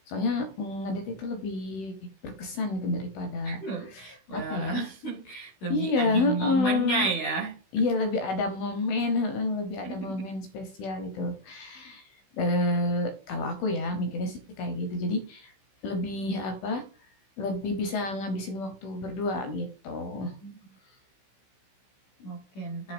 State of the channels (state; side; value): late; right; 16 ms